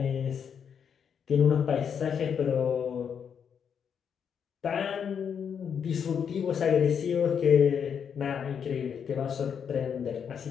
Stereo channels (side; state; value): right; quieter; 7.4 dB